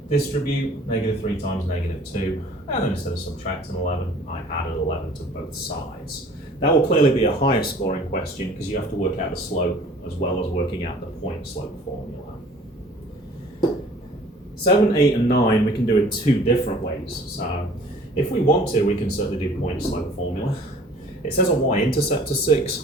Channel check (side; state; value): both; normal; correlation 0.50